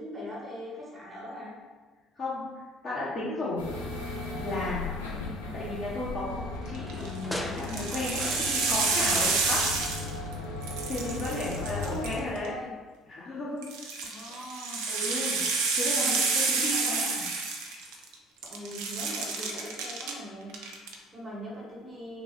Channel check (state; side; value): normal; both; correlation 0.45